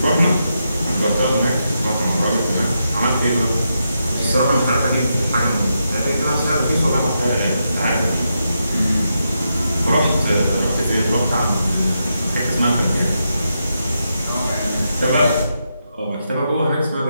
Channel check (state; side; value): inverted; both; correlation -0.84